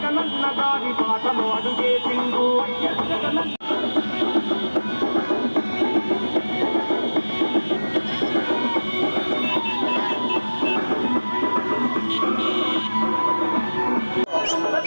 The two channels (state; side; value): inverted; both; correlation -1.00